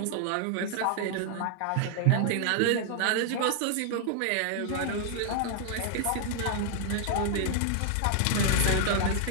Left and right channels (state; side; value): different; both; correlation 0.00